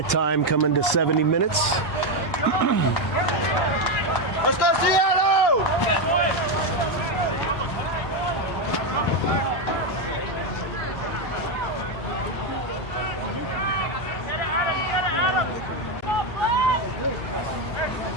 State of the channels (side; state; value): right; late; 1.8 ms